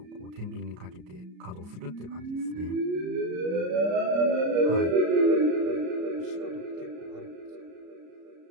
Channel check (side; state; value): left; late; 33 ms